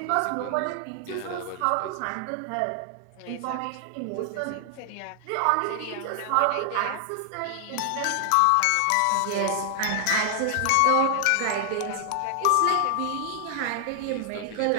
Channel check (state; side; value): different; both; correlation 0.00